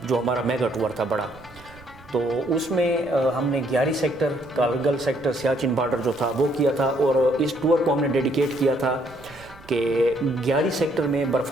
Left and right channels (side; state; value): right; noise; rumble, 23 dB below the sound